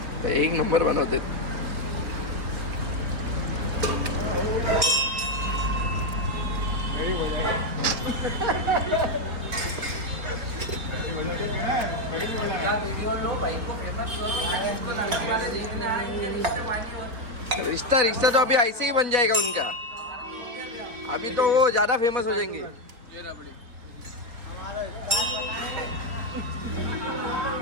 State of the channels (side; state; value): left; late; 3.9 ms